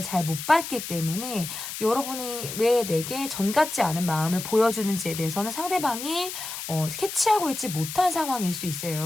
잘 못 받기 때문에 여러분이 왜 내게 전 같지 않은 마음을 보여주는지에 대해서는 상대방이 캐치하고 있지 못한 상황일 수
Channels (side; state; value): left; noise; hiss, 8 dB below the sound